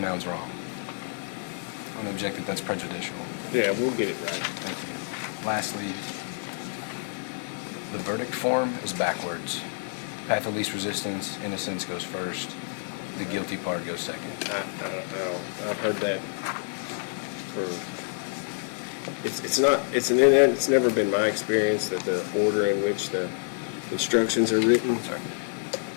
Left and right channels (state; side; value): silent; right; digital silence